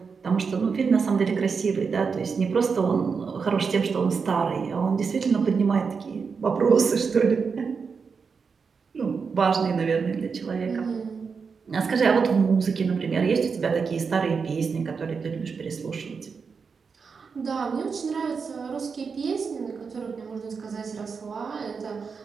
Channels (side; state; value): left; quieter; 5.5 dB